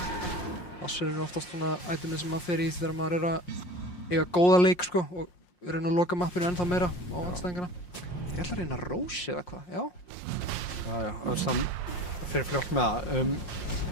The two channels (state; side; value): late; right; 5.6 ms